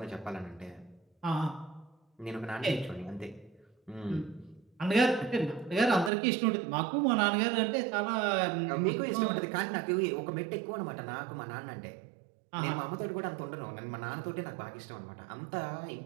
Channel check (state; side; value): drops out; left; at 6.1 s